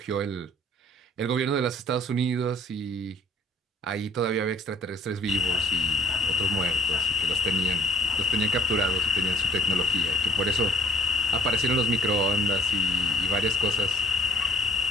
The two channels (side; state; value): both; normal; correlation 0.55